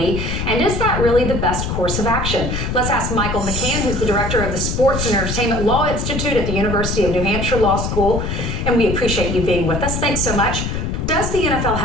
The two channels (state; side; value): noise; left; rumble, 2 dB below the sound